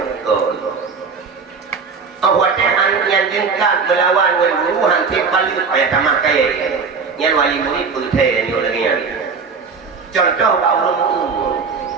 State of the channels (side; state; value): left; quieter; 5.2 dB